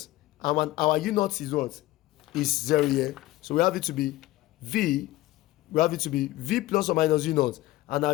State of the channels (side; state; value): right; quieter; 17.1 dB